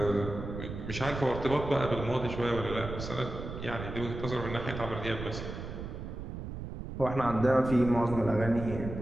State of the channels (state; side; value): noise; right; rumble, 7 dB below the sound